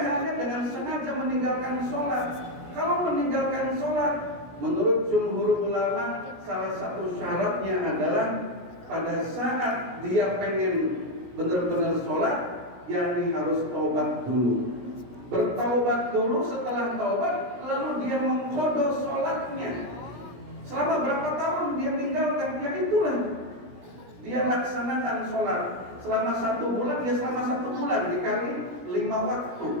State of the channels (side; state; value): left; late; 17 ms